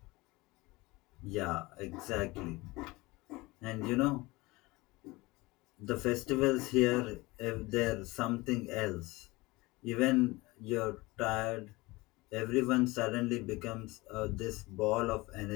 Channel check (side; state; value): right; quieter; 22.1 dB